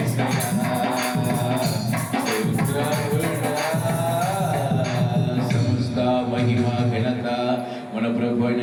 సమస్త మహిమ ఘనత మన ప్రభువైన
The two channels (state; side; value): identical; both; correlation 1.00